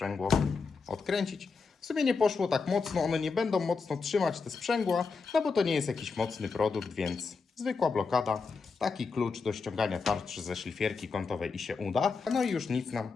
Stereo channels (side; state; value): right; quieter; 4.8 dB